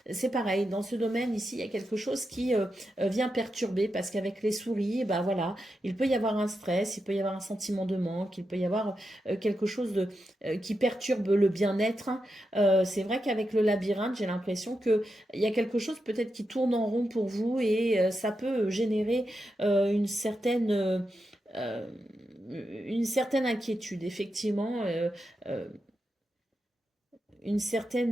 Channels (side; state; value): both; normal; correlation 0.87